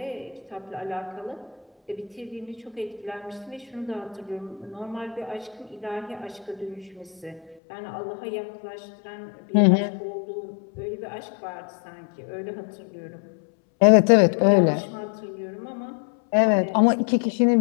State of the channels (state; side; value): drops out; right; at 7.6 s